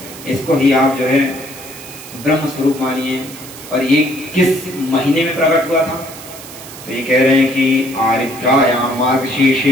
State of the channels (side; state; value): right; noise; hiss, 15 dB below the sound